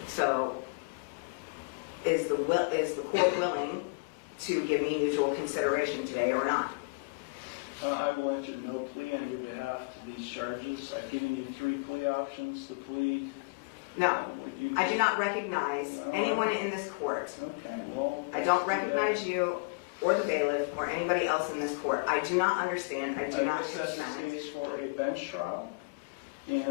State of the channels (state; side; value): quieter; right; 32.9 dB